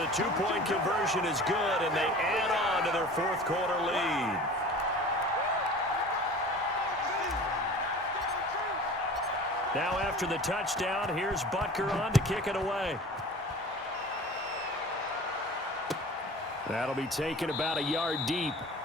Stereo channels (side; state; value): both; normal; correlation 0.41